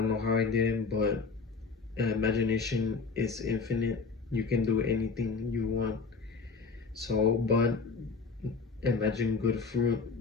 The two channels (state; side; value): quieter; right; 4.5 dB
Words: know how I did it, but imagination is infinite. You can do anything you want. So, but imagine good fruit,